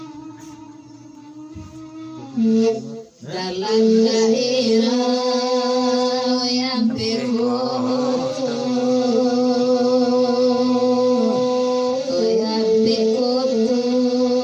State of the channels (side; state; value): both; identical; correlation 1.00